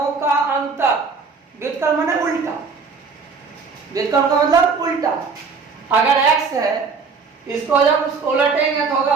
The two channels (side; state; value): left; quieter; 5.0 dB